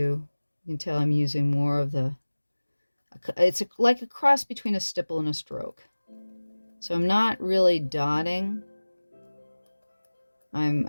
can tell I'm using more of it's like a cross between a stipple and a stroke. So I'm not really dotting.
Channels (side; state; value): both; inverted; correlation -1.00